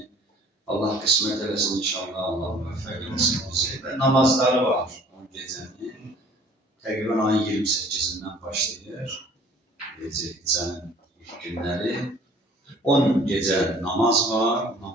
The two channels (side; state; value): both; normal; correlation 0.52